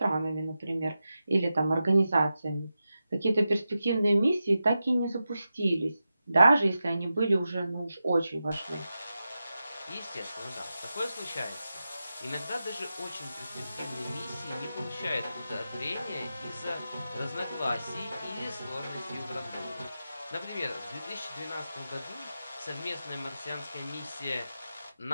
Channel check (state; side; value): inverted; both; correlation -0.91